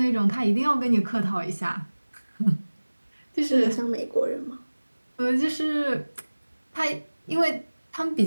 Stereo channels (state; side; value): inverted; both; correlation -1.00